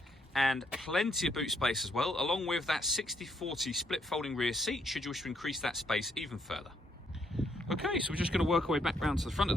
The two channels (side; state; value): both; normal; correlation 0.73